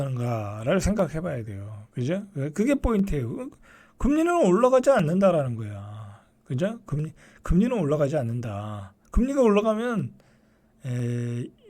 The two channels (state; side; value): identical; both; correlation 1.00